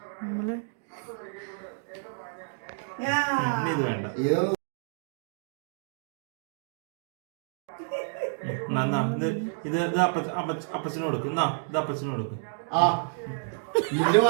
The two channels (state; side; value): silent; left; digital silence